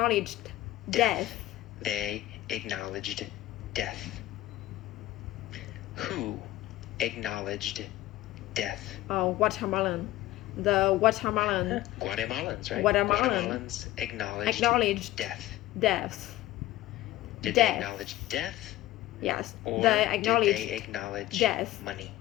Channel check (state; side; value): quieter; right; 15.8 dB